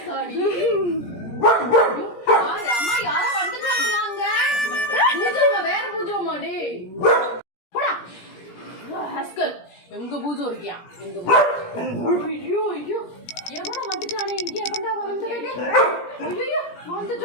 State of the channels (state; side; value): late; right; 17 ms